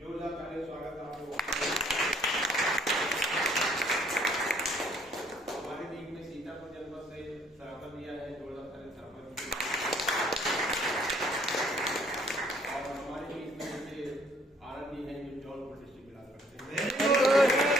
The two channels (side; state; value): both; normal; correlation 0.62